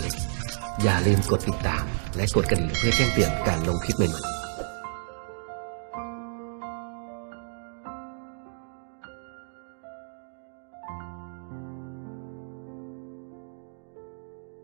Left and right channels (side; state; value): left; silent; digital silence